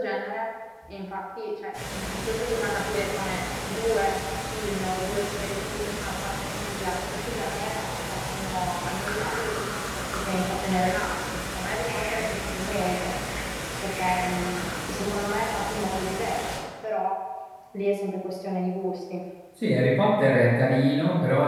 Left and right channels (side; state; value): both; identical; correlation 1.00